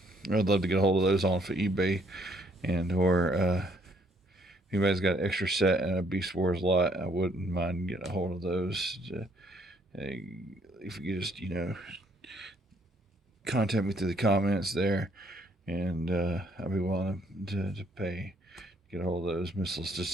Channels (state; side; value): normal; both; correlation 0.66